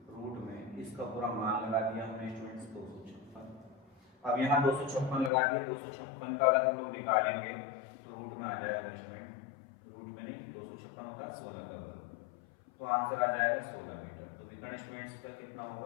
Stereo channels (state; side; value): drops out; right; at 5.3 s